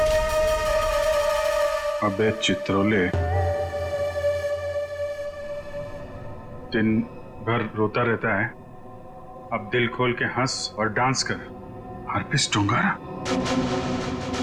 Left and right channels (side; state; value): both; identical; correlation 1.00